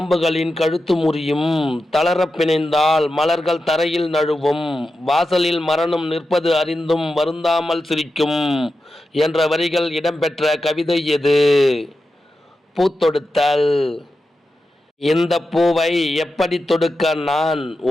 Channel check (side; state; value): both; normal; correlation 0.91